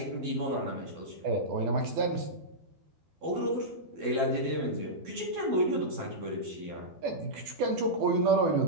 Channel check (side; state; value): left; late; 12 ms